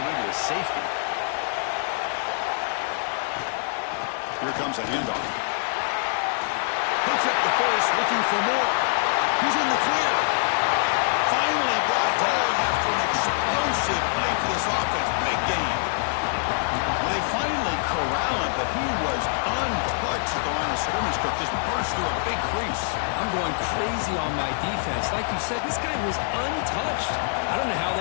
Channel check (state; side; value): silent; right; 62 dB below the other